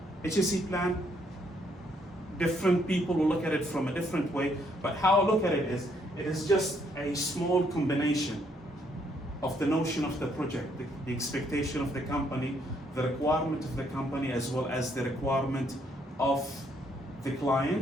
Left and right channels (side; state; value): both; normal; correlation 0.71